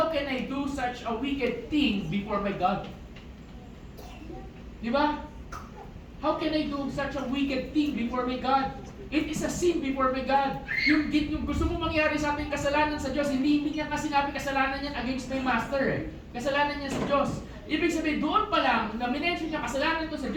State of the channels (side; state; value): both; identical; correlation 1.00